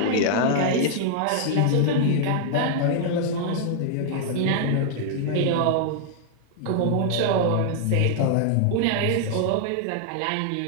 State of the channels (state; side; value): different; both; correlation -0.01